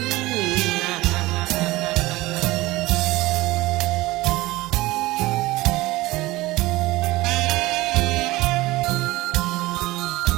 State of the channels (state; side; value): quieter; left; 19.4 dB